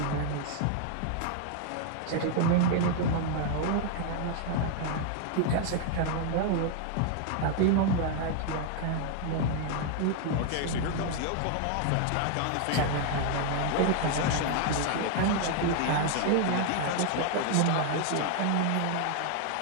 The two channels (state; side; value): different; both; correlation 0.00